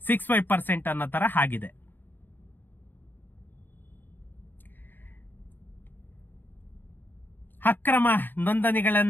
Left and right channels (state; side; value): late; right; 0.092 ms